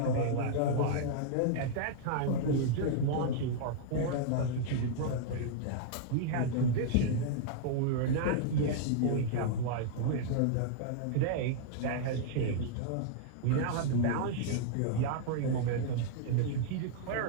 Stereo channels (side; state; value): both; different; correlation -0.01